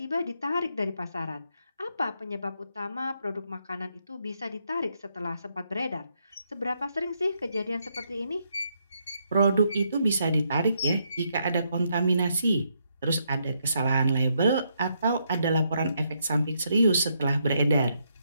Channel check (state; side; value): inverted; both; correlation -0.77